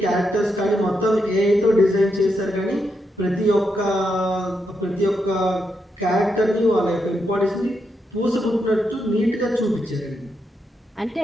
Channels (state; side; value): normal; both; correlation 0.82